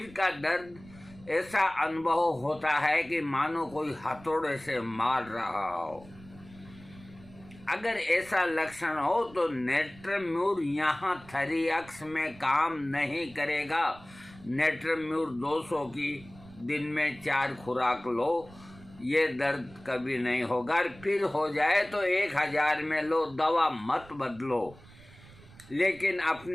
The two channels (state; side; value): noise; right; rumble, 21 dB below the sound